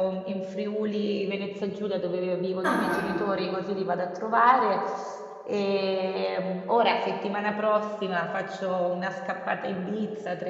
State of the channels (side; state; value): both; identical; correlation 1.00